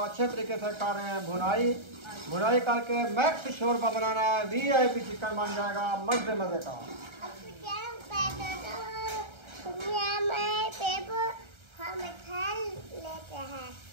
तरीके से कर रहे हैं भुनाई, भुनाई करके मैक्स शोरबा बनाना है। VIP चिकन बन जाएगा मजे मजे का।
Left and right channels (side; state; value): left; late; 1.3 ms